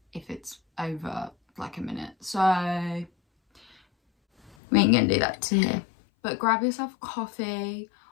if it's over like a minute, so we ain't gonna do that today. But grab yourself a coffee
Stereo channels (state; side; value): drops out; right; at 4.5 s